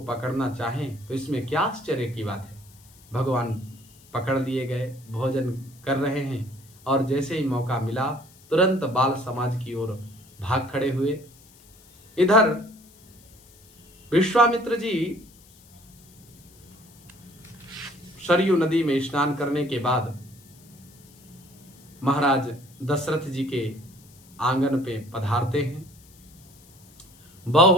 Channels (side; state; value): left; noise; hiss, 26 dB below the sound